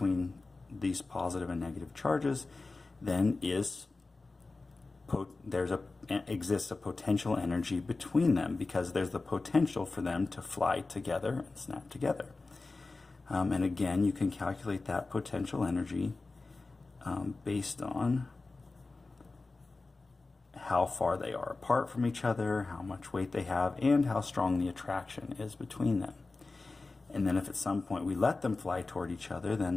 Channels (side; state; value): right; quieter; 3.6 dB